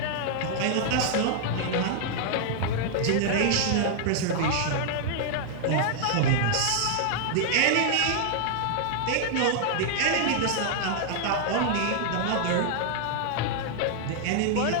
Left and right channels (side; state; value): both; different; correlation 0.00